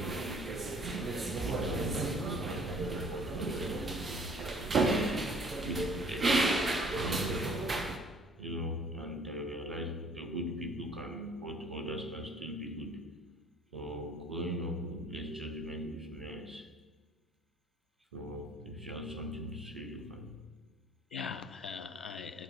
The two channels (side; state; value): both; normal; correlation 0.56